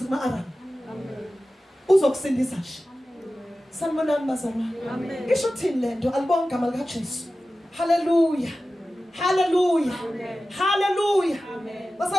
kuma-Aram. Uzokusindisa nje. Sanibonani bazalwane. Ngisho uthini lento alibonga igama likaJesu. Hallelujah. Hallelujah. Hallelujah.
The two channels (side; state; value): both; normal; correlation 0.95